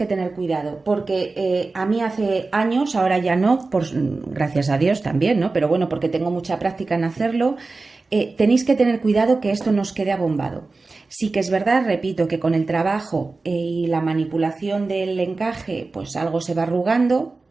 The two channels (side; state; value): left; quieter; 3.7 dB